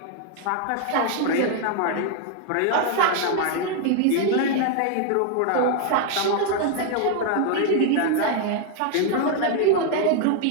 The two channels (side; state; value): both; different; correlation 0.00